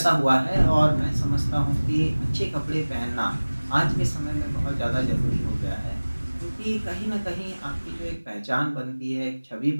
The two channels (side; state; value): both; inverted; correlation -1.00